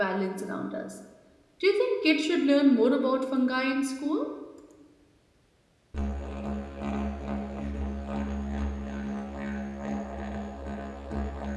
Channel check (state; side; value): identical; both; correlation 1.00